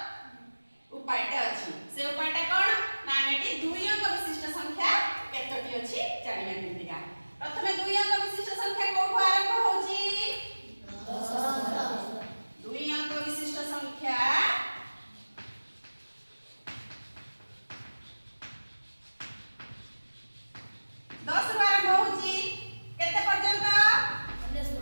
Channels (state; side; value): inverted; both; correlation -1.00